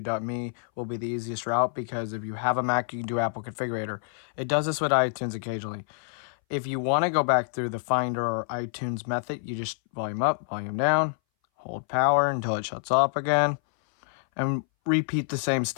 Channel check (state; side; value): silent; right; 60 dB below the other